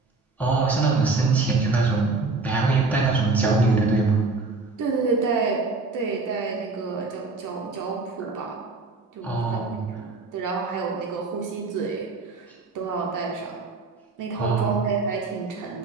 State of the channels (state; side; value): quieter; left; 3.7 dB